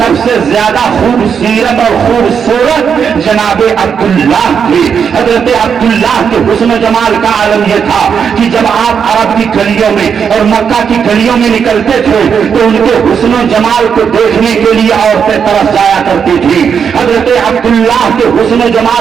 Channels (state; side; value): quieter; left; 7.0 dB